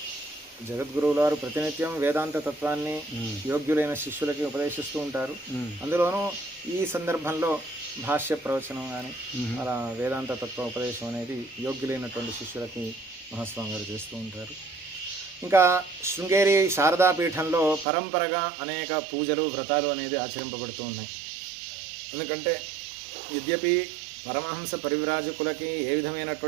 జగద్గురువుల వారు ప్రతినిత్యం వేదాంత తత్వాన్ని యోగ్యులైన శిష్యులకి ఉపదేశిస్తూ ఉంటారు. అందులోనూ ఈ సందర్భంలో భాష్య ప్రవచనం కానీ అలా వేదాంత తత్వ ఉపదేశం అనేది యోగ్యులైనటువంటి శిష్యులకి మహాస్వామి గారు చేస్తూ ఉంటారు. ఇంకా శృంగేరి శారదాపీఠంలో పరంపరగా అనేక పూజలు వ్రతాలు అనేది ఆచరింపబడుతూ ఉన్నాయి. ఎందుకంటే యద్యపి పరమహంస పరివ్రాజకులకి ఏ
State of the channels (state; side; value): drops out; left; at 17.9 s